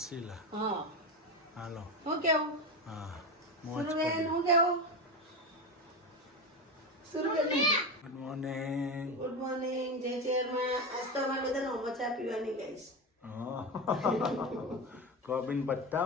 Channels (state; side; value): normal; both; correlation 0.19